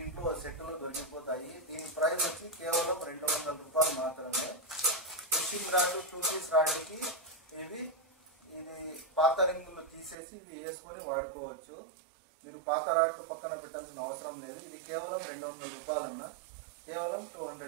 సెట్లు దొరికిపోతాయి. దీని ప్రైస్ వచ్చి కేవలం 200 రూపాయలు మాత్రమే. ఫిషింగ్ రాడ్ 2 పీస్ రాడ్కి ఇవి ఇది పాత రింగులు తీసేసి ఇవి వేసుకొని వాడుకోవచ్చు. మీరు పాత రాడ్లు పక్కన పెట్టాల్సిన అవసరం లేదు. ఇది కేవలం 200 రూపాయలు అన్న, కేవలం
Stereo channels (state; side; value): drops out; left; at 10.2 s